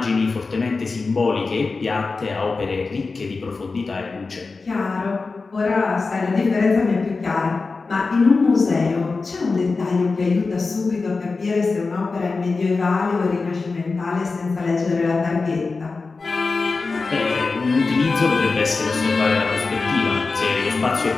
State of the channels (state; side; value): quieter; right; 4.1 dB